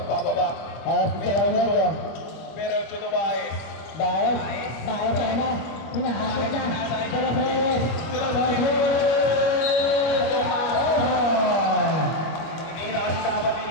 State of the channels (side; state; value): right; late; 25 ms